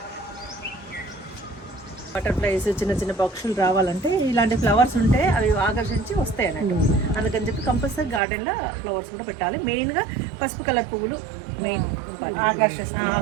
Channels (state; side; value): drops out; left; at 8.2 s